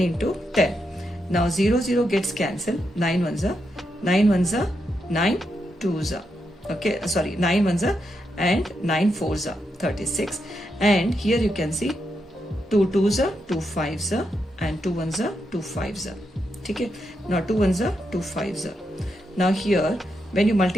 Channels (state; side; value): normal; both; correlation 0.83